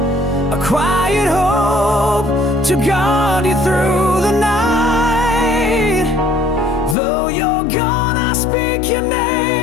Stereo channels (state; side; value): drops out; right; at 7.0 s